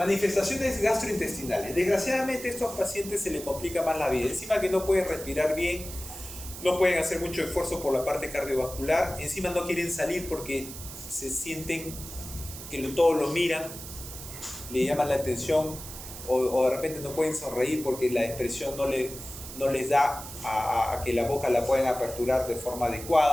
gastrointestinales. Desgraciadamente a estos pacientes se les complica más la vida. Encima que no pueden respirar bien, no pueden hacer mucho esfuerzo por la parte cardiovascular, encima no quieren salir porque se sienten que todos lo miran, le llaman la atención, o de repente no pueden sonreír porque la expresión no les da a que la boca la puedan aperturar de forma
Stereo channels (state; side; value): noise; right; hiss, 12 dB below the sound